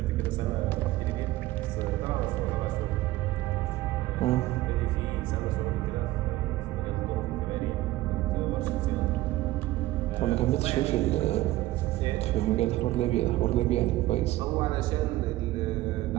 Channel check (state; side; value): quieter; left; 16.9 dB